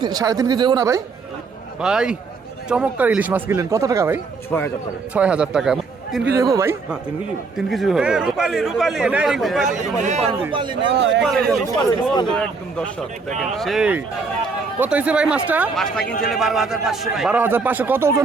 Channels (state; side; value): quieter; left; 4.5 dB